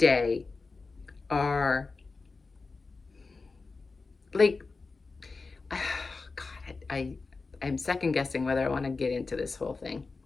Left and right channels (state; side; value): quieter; right; 4.1 dB